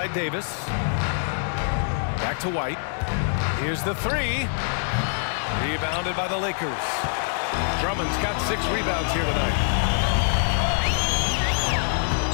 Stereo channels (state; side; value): silent; right; digital silence